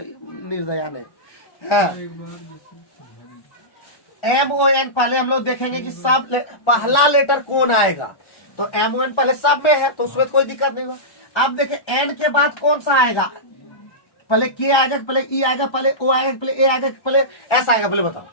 नहीं। MON पहले हम लोग देखेंगे कि सब पहला लेटर कौन आएगा, तो MON पहले सब में है तो उसमें कोई दिक्कत नहीं होगा। अब देखें N के बाद कौन सा आएगा, पहले K आएगा, पहले E आएगा, पहले O आएगा, पहले A आएगा, पहले S आएगा, पहले बताओ।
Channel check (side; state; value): right; late; 1.1 ms